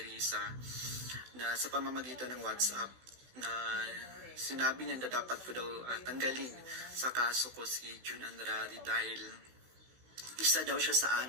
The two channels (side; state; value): left; late; 16 ms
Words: Risa, na sa pamamagitan ng WhatsApp na sinabi niya na dapat ko daw tanggalin sa kaso ko si June Andrade dahil isa daw siya sa